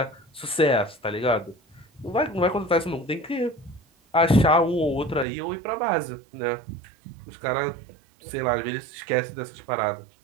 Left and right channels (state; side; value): drops out; left; at 5.2 s